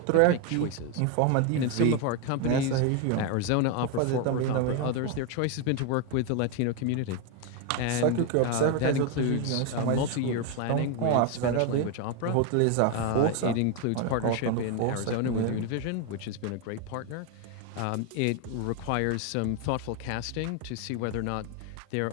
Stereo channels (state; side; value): different; both; correlation 0.01